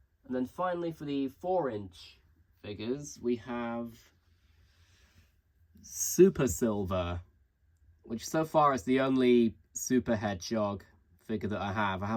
then finally, for the 4-inch figures, we have Super Silver, which so far is the only Super Hedgehog figure that I have. I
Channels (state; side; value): identical; both; correlation 1.00